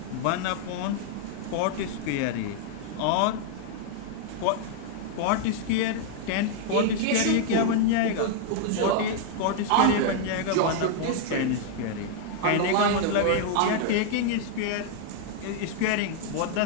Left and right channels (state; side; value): different; both; correlation -0.01